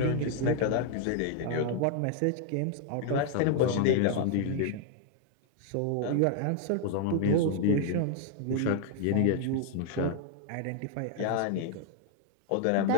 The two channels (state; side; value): different; both; correlation 0.00